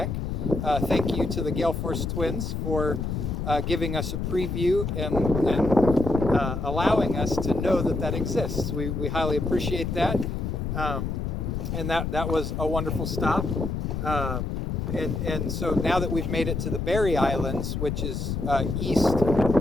Thank you to the Gale Force Twins for giving us a preview and allowing us to know that exists. We highly appreciate that, and that was a wonderful stop. And so now that we've made it to the Berry Islands, which is east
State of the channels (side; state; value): left; noise; rumble, 2 dB below the sound